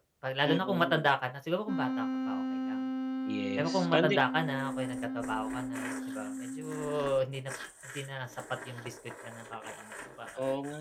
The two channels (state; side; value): identical; both; correlation 1.00